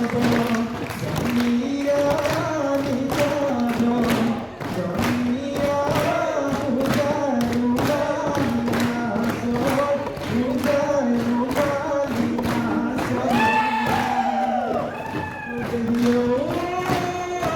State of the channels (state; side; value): identical; both; correlation 1.00